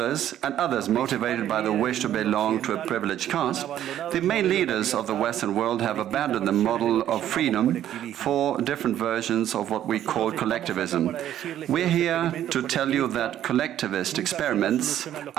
and others motivated by the wish to belong to a privileged caste, the main leaders of the Western world have abandoned the model of freedom for different versions of what we call collectivism. We're here to tell you that collectivist experiments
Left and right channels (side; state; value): left; quieter; 11.5 dB